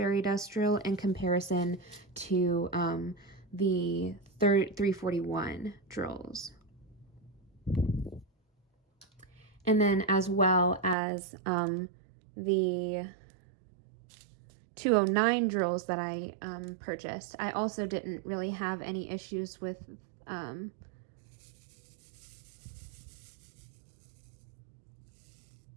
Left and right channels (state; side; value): drops out; left; at 11.0 s